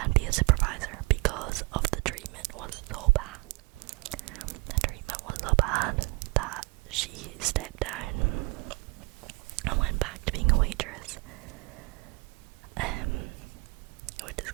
be a supervisor, because of the treatment was so bad. The treatment was so bad that she stepped down and went back to being a waitress, which is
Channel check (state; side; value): quieter; left; 26.9 dB